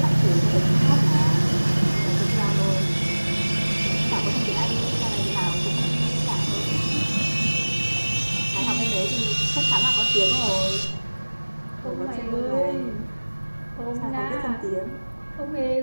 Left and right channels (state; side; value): inverted; both; correlation -1.00